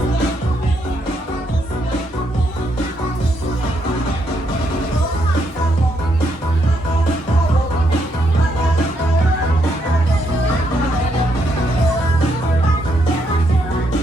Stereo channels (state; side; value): normal; both; correlation 0.76